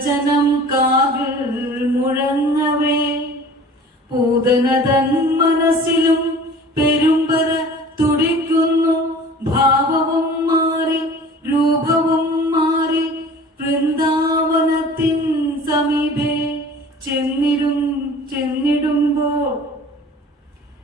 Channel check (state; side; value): normal; both; correlation 0.44